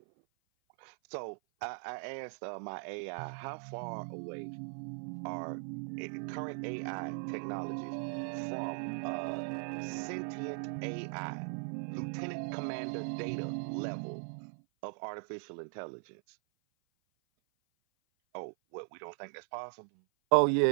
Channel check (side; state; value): left; silent; 52 dB below the other